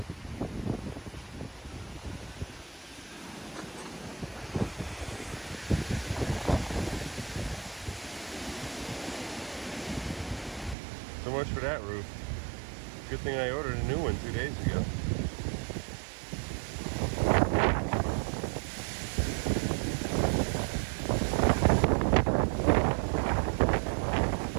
So much for that roof. Good thing I ordered a new one 2 days ago.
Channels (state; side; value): drops out; left; at 10.8 s